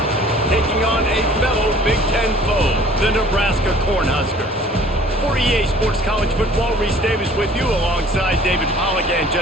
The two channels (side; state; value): both; normal; correlation 0.52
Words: taking on a fellow Big Ten foe, the Nebraska Cornhuskers. 48 Sports College Football, Reese Davis with you alongside David Pollack and